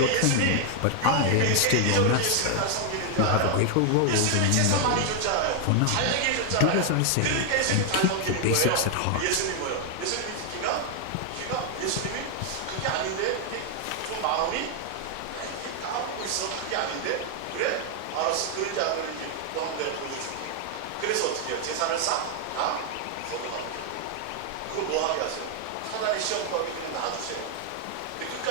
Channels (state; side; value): different; both; correlation 0.00